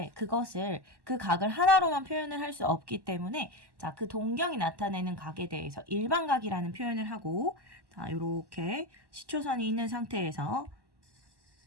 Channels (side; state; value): left; late; 1.1 ms